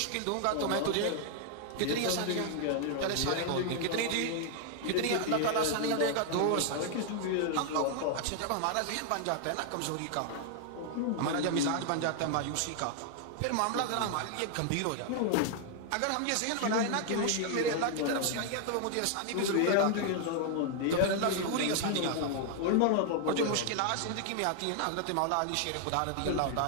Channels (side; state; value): both; different; correlation 0.00